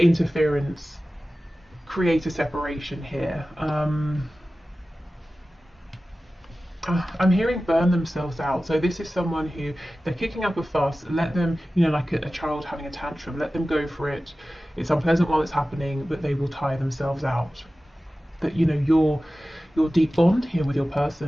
create a separation here. I'm hearing burn themselves out. So this is someone who, they're kicking up a fuss. Let them, like a child having a tantrum, let them go for it. It's unpleasant while it's happening, but they will tire themselves out. That your deep bond here with your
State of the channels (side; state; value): both; normal; correlation 0.96